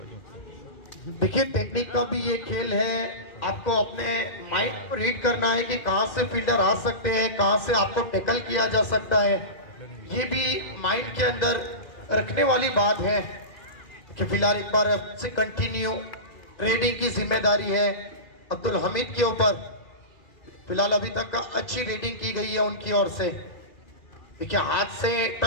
देखिए टेक्निक का भी ये खेल है, आपको अपने माइंड को रीड करना है कि कहां से फील्डर आ सकते हैं, कहां से आपको टैकल किया जा सकता है। ये भी माइंड के अंदर रखने वाली बात है कि फिलहाल एक बार से कंटिन्यू रेडिंग की जिम्मेदारी है अब्दुल हमीद के ऊपर। फिलहाल अभी तक अच्छी रेडिंग की गई है उनकी ओर से। देखिए हाथ से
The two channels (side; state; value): right; late; 2.0 ms